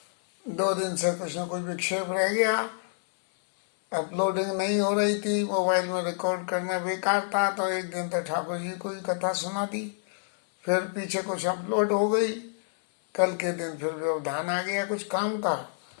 दो दिन से कुछ न कुछ विक्षेप रह गया, अपलोडिंग नहीं हो रही थी, मोबाइल में रिकॉर्ड करना बेकार था। तो एक दिन तो ठाकुर जी को ही कथा सुना दी, फिर पीछे कुछ अपलोड हो गई। कल के दिन फिर व्यवधान आ गया कुछ काम का,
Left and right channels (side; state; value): right; silent; 60 dB below the other